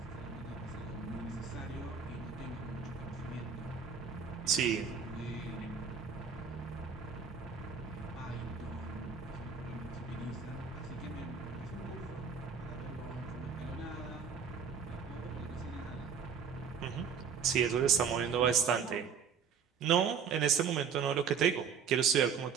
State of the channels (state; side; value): quieter; left; 6.6 dB